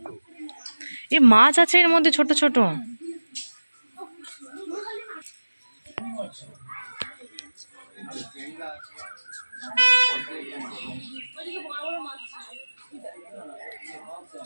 এ মাছ আছে এর মধ্যে ছোট ছোট।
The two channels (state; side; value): inverted; both; correlation -1.00